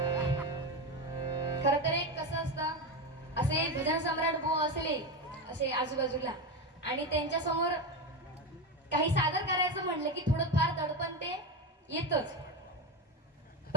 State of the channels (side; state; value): both; normal; correlation 0.16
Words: खर तर एक कसं असतं असे भजन सम्राट बुवा असले असे आजूबाजूला आणि त्यांच्या समोर काही सादर करायचं म्हणलं की थोडं फार दडपण ते येतच